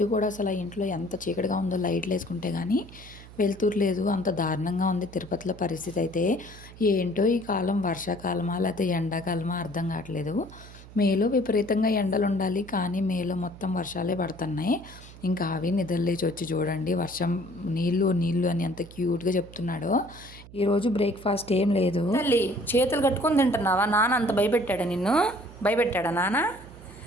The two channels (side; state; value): right; noise; hum, 18 dB below the sound